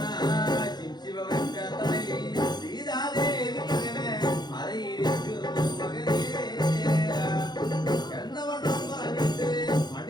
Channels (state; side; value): late; right; 0.21 ms